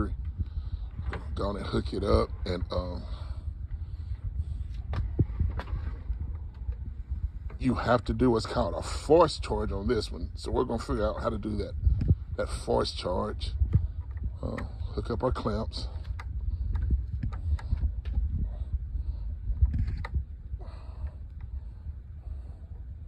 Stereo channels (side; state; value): both; identical; correlation 1.00